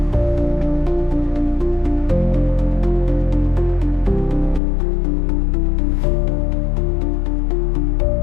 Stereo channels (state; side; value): drops out; right; at 4.6 s